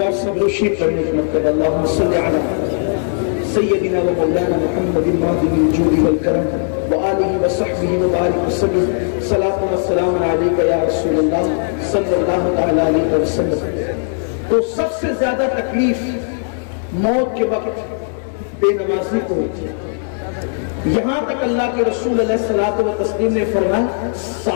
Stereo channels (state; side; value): silent; right; digital silence